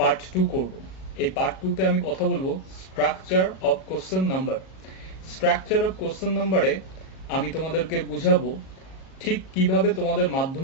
2 করব। এই পার্ট 2 তে আমি কথা বলবো structure of question number. Structure of question নাম্বারে আমি তোমাদেরকে বুঝাবো ঠিক কিভাবে তোমাদের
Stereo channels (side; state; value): right; late; 37 ms